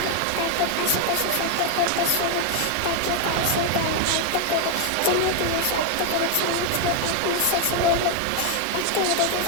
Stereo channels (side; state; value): both; different; correlation 0.01